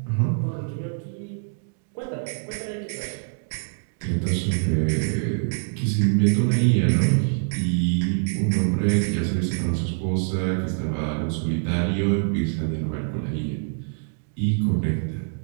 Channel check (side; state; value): left; silent; 61 dB below the other